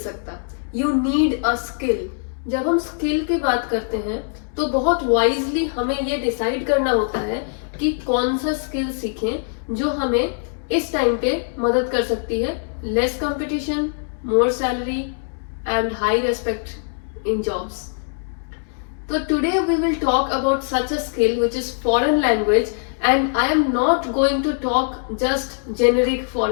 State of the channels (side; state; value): right; silent; digital silence